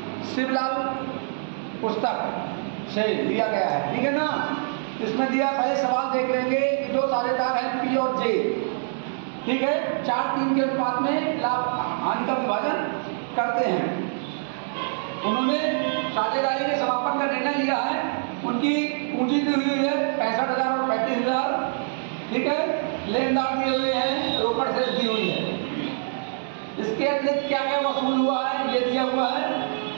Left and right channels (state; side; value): silent; left; digital silence